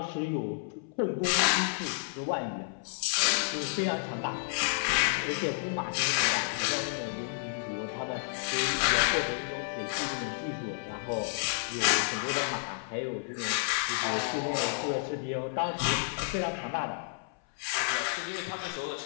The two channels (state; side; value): silent; right; 57 dB below the other